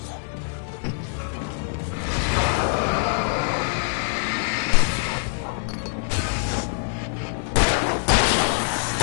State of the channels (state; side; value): silent; right; digital silence